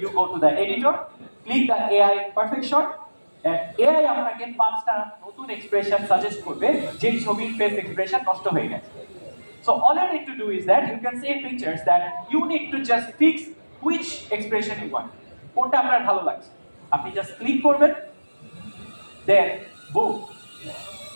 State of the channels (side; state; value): both; inverted; correlation -1.00